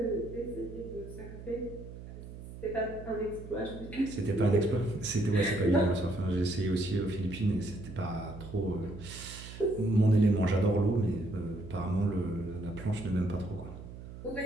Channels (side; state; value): right; noise; hum, 13 dB below the sound